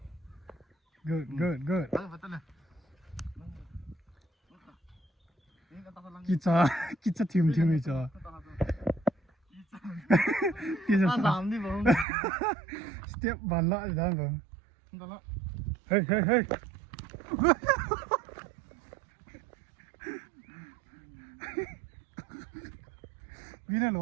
Good. Kicha team 이죠. Kicha làm đi bông. Step bàn lại đó bông. Hey. Vine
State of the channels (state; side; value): drops out; left; at 12.1 s